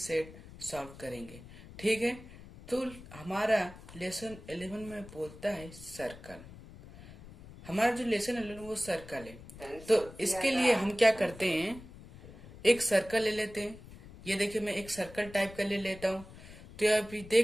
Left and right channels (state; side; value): noise; left; rumble, 17 dB below the sound